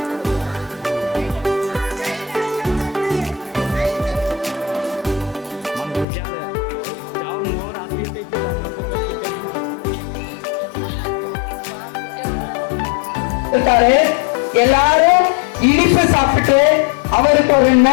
கொடுத்திருக்காரு. எல்லாரும் இனிப்பு சாப்பிட்டு அவருக்கு ஒரு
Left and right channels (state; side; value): drops out; right; at 6.1 s